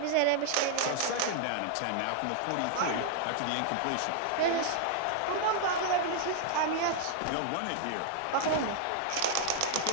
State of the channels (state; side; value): different; both; correlation -0.01